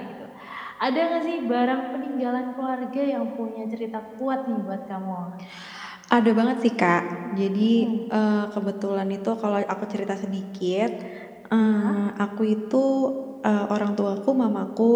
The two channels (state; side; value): identical; both; correlation 1.00